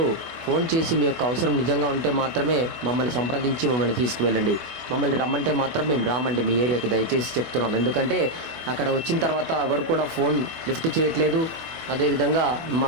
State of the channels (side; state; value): left; late; 24 ms